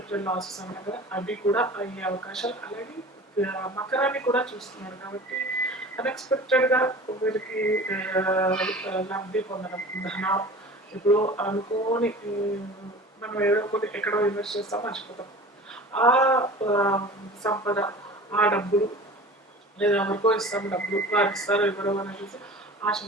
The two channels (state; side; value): normal; both; correlation 0.39